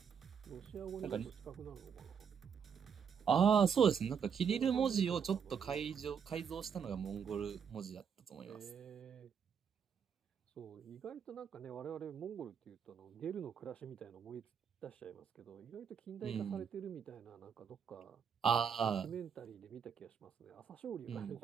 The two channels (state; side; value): quieter; left; 7.0 dB